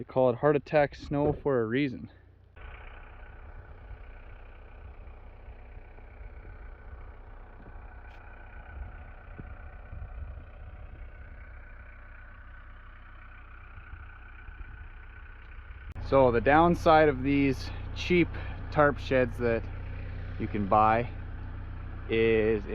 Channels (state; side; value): identical; both; correlation 1.00